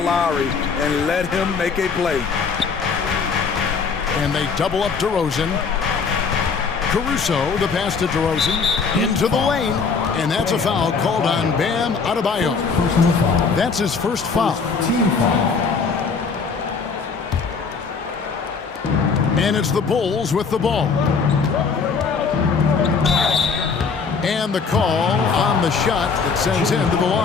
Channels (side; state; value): right; quieter; 5.3 dB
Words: and let him make a play. And they double up DeRozan. Caruso, the pass to DeRozan, into the lane. And that's a foul called on Bam Adebayo. That's his first foul. Team foul. And it's the Bulls with the ball. And the call on the shot that sends him to the